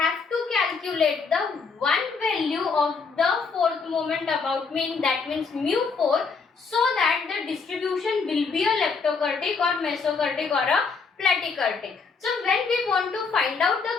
to calculate the one value of the fourth moment about mean. That means mu4. So that the distribution will be a leptokurtic or mesokurtic or a platykurtic. So when we want to find out the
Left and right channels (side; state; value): right; quieter; 5.0 dB